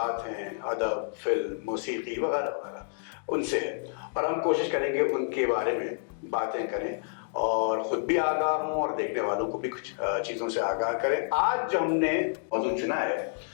हैं, अदब, फिल्म, मौसीकी वगैरह वगैरह, उनसे है और हम कोशिश करेंगे उनके बारे में बातें करें और ख़ुद भी आगाह हों और देखने वालों को भी कुछ चीज़ों से आगाह करें। आज जो हमने मौजूद चुना है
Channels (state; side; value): silent; right; digital silence